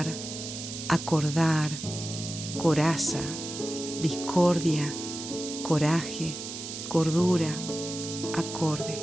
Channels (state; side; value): noise; right; hiss, 8 dB below the sound